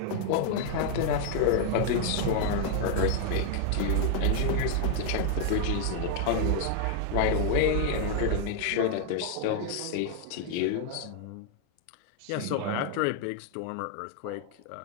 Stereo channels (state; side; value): different; both; correlation 0.00